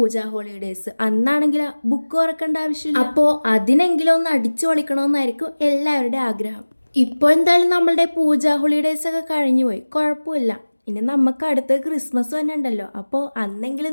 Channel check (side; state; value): both; inverted; correlation -1.00